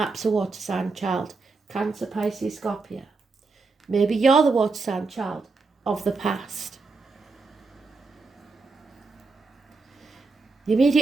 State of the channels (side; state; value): left; quieter; 4.1 dB